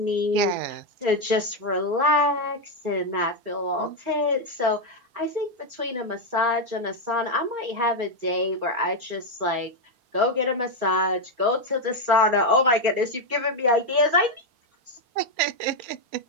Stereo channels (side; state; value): left; late; 4.0 ms